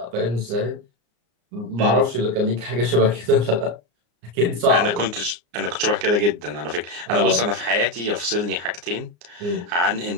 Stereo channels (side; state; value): left; late; 34 ms